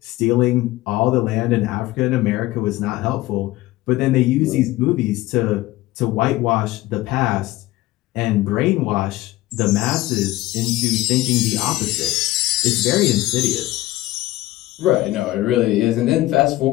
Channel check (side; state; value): right; quieter; 17.3 dB